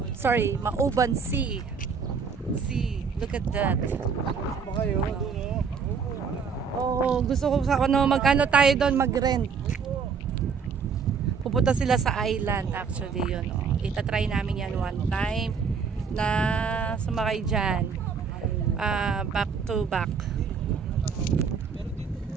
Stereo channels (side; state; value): left; quieter; 5.9 dB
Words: Mauban Sea. Look at that. Oh, gusto ko sa magkano tayo doon mag-rent. Pupunta sila sa island actually yun. Itatry namin yan one time na sumakay dyan. Back to back.